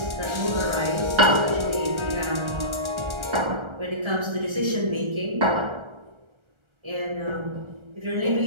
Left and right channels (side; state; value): left; late; 1.3 ms